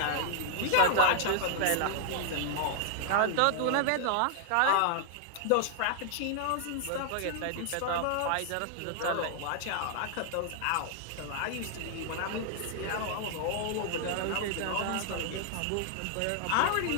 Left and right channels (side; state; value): both; different; correlation -0.01